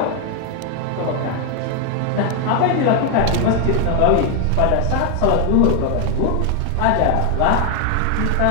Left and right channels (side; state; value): both; different; correlation 0.00